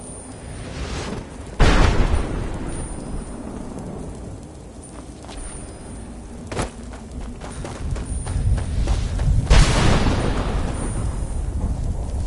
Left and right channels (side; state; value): both; identical; correlation 1.00